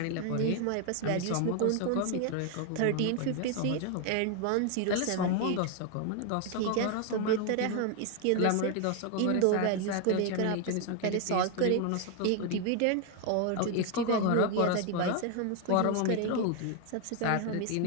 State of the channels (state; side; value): different; both; correlation 0.01